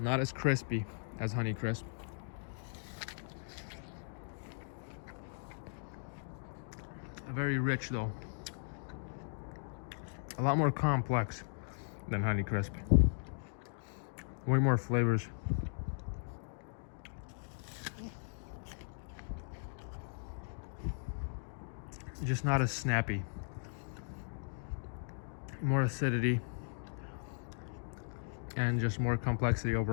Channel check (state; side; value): silent; right; digital silence